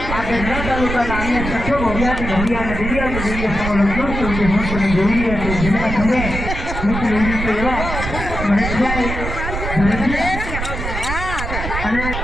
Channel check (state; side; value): noise; right; rumble, 5 dB below the sound